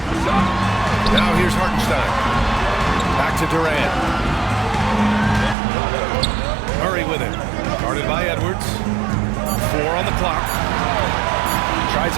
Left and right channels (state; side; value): drops out; left; at 5.6 s